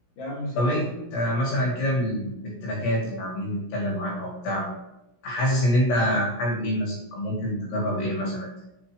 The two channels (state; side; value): late; right; 17 ms